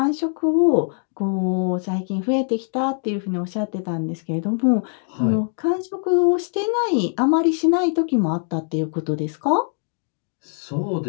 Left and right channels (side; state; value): right; silent; 59 dB below the other